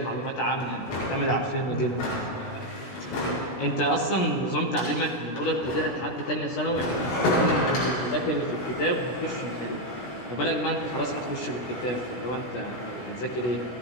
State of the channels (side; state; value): right; late; 16 ms